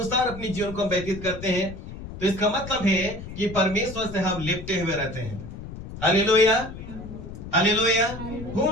अपनी जीवन को व्यतीत करते हैं। तो इसका मतलब है कि परमेश्वर से हम लिपटे हुए रहते हैं। Hallelujah, hallelujah.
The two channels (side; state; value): left; noise; rumble, 11 dB below the sound